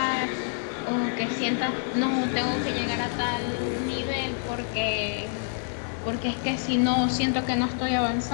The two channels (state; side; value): silent; right; digital silence